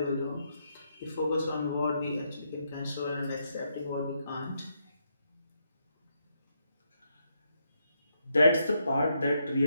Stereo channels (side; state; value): both; inverted; correlation -0.79